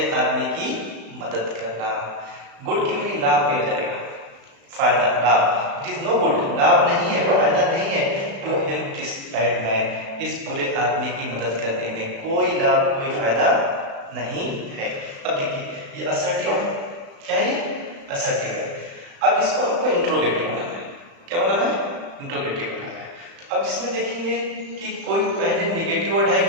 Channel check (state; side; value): late; left; 36 ms